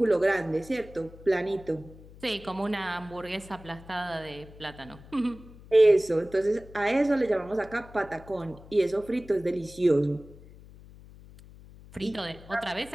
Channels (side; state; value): left; noise; hum, 20 dB below the sound